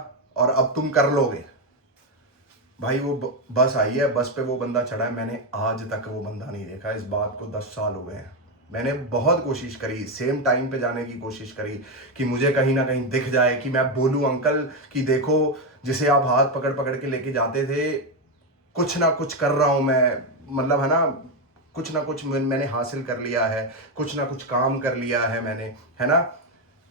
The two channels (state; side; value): normal; both; correlation 0.08